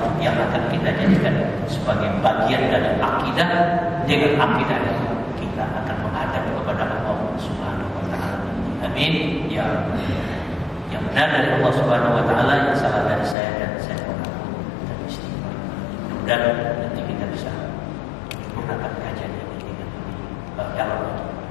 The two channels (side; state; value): right; drops out; at 13.4 s